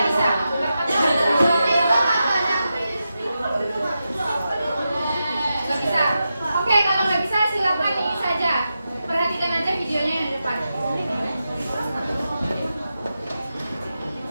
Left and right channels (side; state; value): both; inverted; correlation -0.89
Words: bisa. Nggak bisa. Oke, kalau nggak bisa silakan ini saja. Perhatikan aja videonya yang di depan.